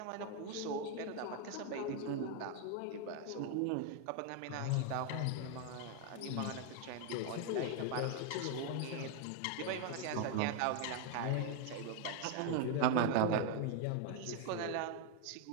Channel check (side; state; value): both; different; correlation 0.01